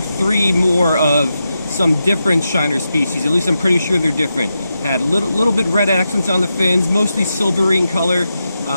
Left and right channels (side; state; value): both; inverted; correlation -0.88